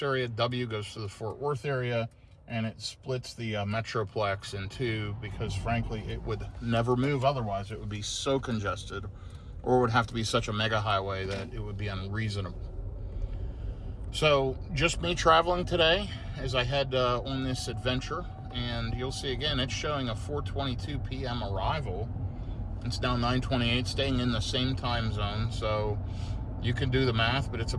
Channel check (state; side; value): identical; both; correlation 1.00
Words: area, W goes to the Fort Worth area, and it splits the Metroplex in two because, frankly, it would never move otherwise. It would be so congested, or it would have to be such a mega highway that it would be unreasonable. So just me traveling today as I head on this adventure, and you'll see again it's showing a 4:22 p.m. arrival. It's now 9:28, staying in the same time zone, so you can do the math, but it's